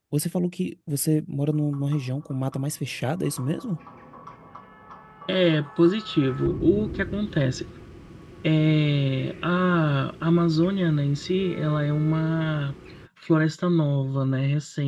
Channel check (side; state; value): both; identical; correlation 1.00